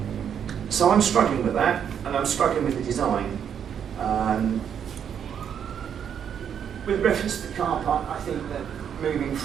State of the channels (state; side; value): quieter; left; 8.3 dB